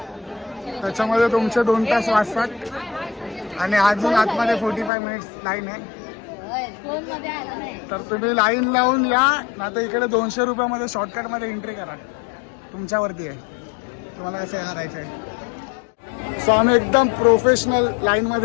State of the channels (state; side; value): drops out; right; at 4.9 s